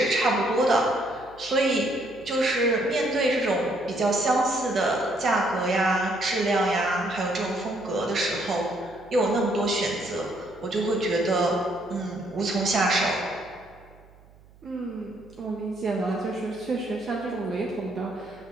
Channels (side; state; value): right; noise; hum, 26 dB below the sound